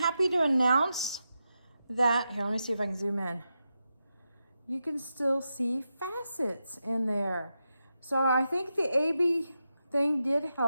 to announce that, here, let me see if I can zoom in. You can still see facets in there. So I think the AB thing did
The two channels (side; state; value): both; inverted; correlation -0.88